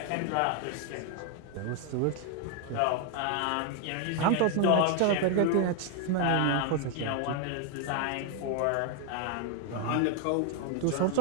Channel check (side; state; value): both; different; correlation 0.01